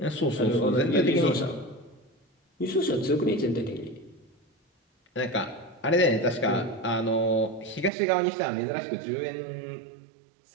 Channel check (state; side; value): drops out; left; at 7.9 s